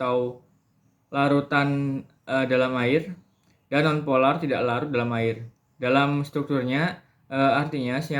larutan dalam air, dan nonpolar tidak larut dalam air. Dalam strukturnya, artinya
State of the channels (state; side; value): identical; both; correlation 1.00